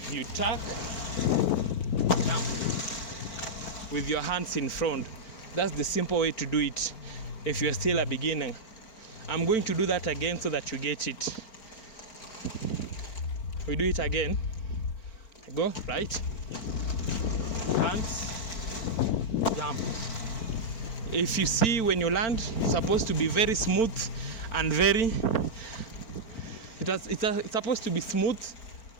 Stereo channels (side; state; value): right; late; 4.4 ms